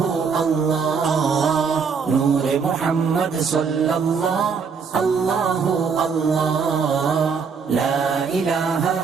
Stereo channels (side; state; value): left; quieter; 5.8 dB